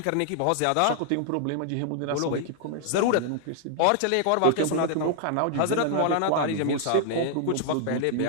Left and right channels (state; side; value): different; both; correlation 0.00